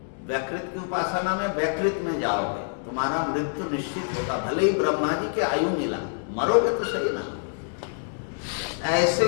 व्याकृत की उपासना में व्याकृत में जाओगे, तुम्हारा मृत्यु निश्चित होगा। भले ही ब्रह्मा जी की आयु मिला, मरोगे तो सही ना। ऐसे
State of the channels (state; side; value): silent; right; digital silence